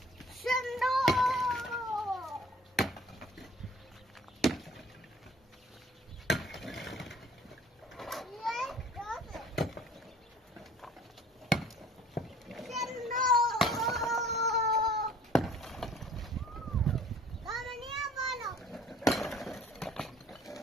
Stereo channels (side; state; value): both; normal; correlation 0.52